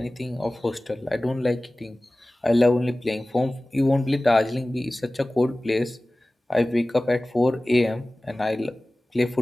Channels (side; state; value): both; normal; correlation 0.98